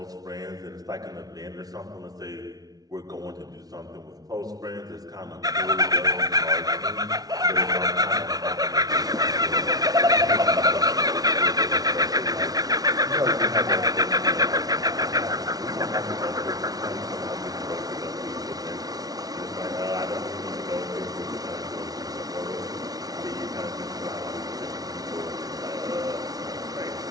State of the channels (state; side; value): late; left; 0.18 ms